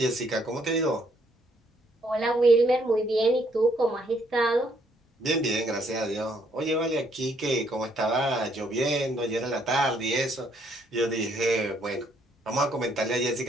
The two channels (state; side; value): normal; both; correlation 0.69